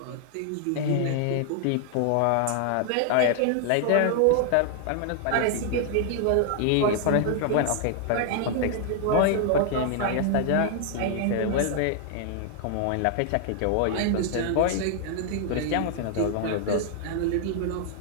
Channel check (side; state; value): both; different; correlation 0.00